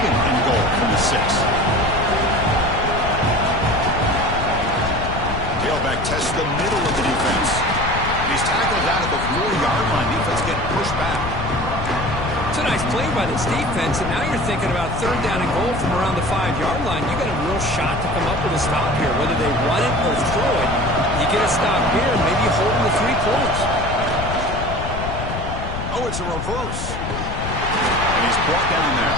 and goal from the 6. Tailback tests the middle of the defense. And he's tackled down at the 4-yard line. Defense getting pushed back. It's a nice play by this defense, and now you're thinking about third down and goal from around the 5-yard line. You got a real shot to come up with a stop here. Whether they run it or throw it, you get a stop here, and maybe you hold them to 3 points. Oh, it's a reverse. And he's brought down there.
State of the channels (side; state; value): left; noise; rumble, 6 dB below the sound